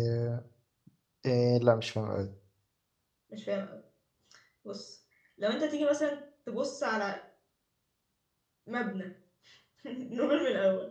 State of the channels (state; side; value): identical; both; correlation 1.00